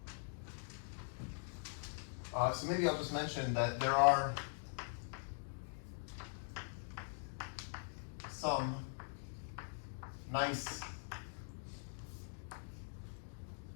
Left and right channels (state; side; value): silent; right; digital silence